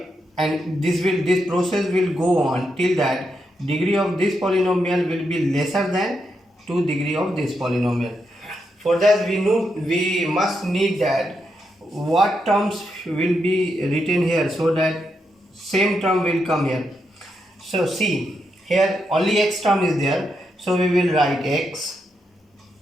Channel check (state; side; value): normal; both; correlation 0.82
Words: this process will go on till that degree of this polynomial will be lesser than 2 degree of this polynomial. For that we must need that what terms will be written here, so that same term will come here. So see, here only x term is there, so we will write x.